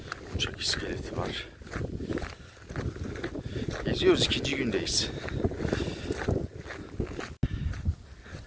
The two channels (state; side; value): identical; both; correlation 1.00